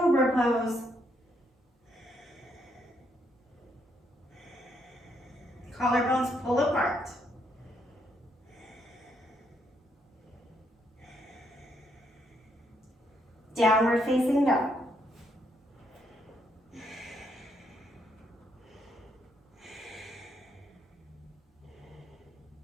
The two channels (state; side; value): normal; both; correlation 0.74